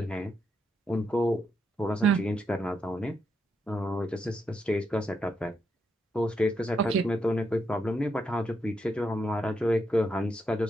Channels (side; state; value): both; normal; correlation 0.80